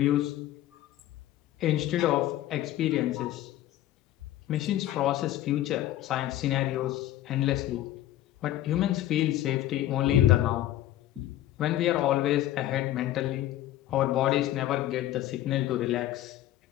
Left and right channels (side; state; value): right; quieter; 13.8 dB